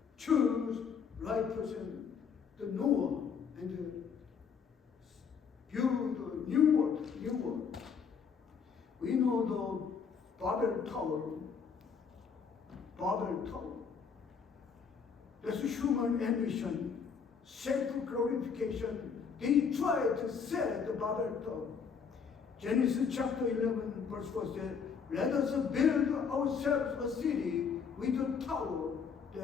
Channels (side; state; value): right; quieter; 6.3 dB